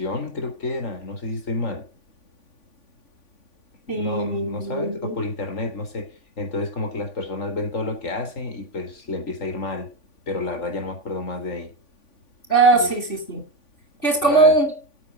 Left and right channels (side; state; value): right; late; 3.5 ms